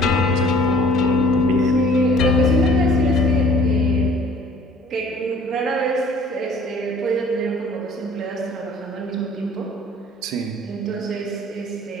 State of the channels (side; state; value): both; normal; correlation 0.52